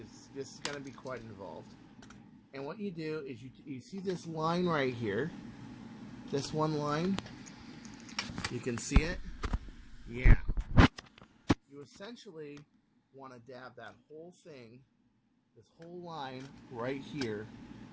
this is going to be quite involved. And what you do is you see this line right here. This one line. You can see it. Yeah. You essentially want to dab that whole thing, this whole line right here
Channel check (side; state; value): both; identical; correlation 1.00